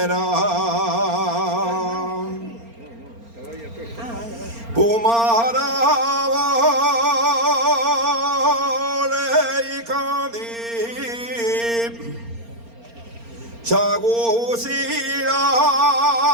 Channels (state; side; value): late; left; 4.3 ms